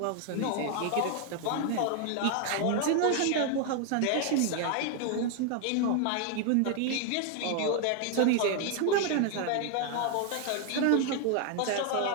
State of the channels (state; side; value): different; both; correlation 0.00